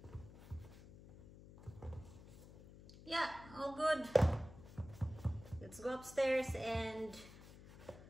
Yeah, all good. Let's go upstairs and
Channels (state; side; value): noise; left; hum, 17 dB below the sound